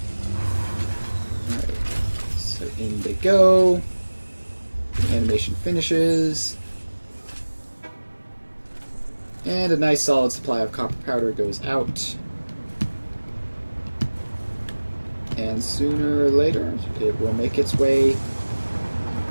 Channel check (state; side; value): inverted; both; correlation -1.00